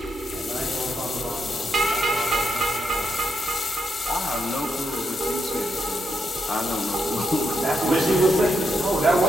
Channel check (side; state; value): both; normal; correlation 0.81